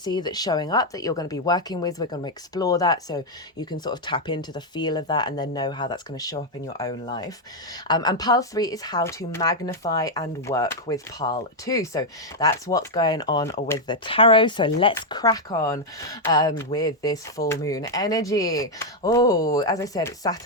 that's showing up that you're going to be working with. We're going to explore that so you can sort of tap into the feel of that and then know how that's going to show up in your own life. And pile 3 is how to magnify and work with pile 2. So that's what's going on with the tarot. So let's crack on with this full moon energy. Oh, as I said, it's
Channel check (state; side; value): normal; both; correlation 0.00